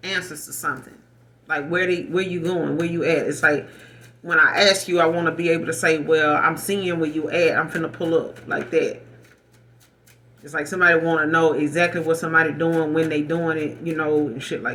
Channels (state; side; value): identical; both; correlation 1.00